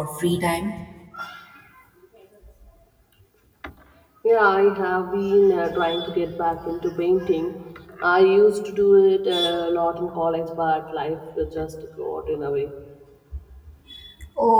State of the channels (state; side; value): identical; both; correlation 1.00